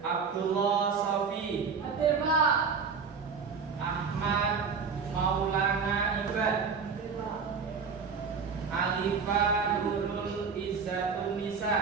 Abdullah Sofi, Hadir, Pak. Ahmad Maulana Ibad, Alifa Nurul Izzatun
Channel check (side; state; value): left; quieter; 5.6 dB